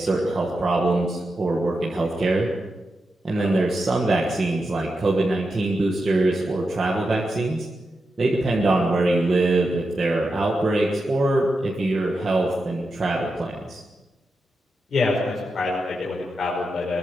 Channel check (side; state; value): both; normal; correlation 0.88